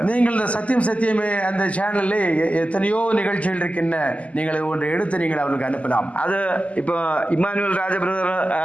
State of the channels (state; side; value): late; right; 0.067 ms